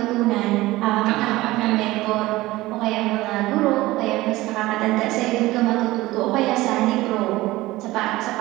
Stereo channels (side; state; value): left; quieter; 18.4 dB